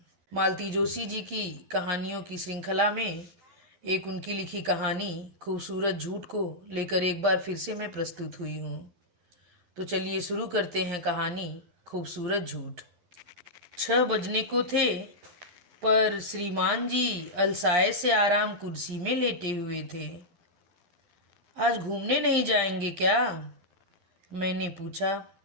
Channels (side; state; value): left; late; 12 ms